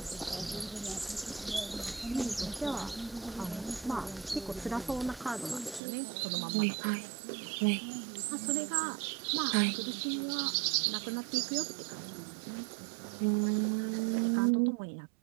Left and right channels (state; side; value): drops out; left; at 5.8 s